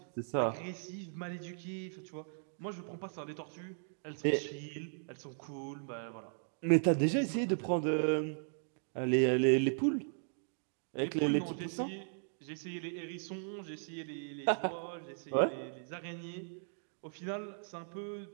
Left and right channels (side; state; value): left; silent; digital silence